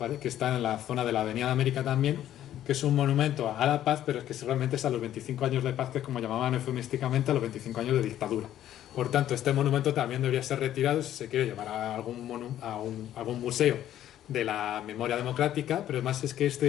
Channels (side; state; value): right; quieter; 11.9 dB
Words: está en la zona de la Avenida de América también, que es un monumento a la paz, pero es que realmente es a los 25 años de paz, que es como llamaban eufemísticamente a los 25 años de dictadura. Por tanto, este monumento también debería ser retirado si se quiere llevar a algún museo de la memoria democrática, pero además es que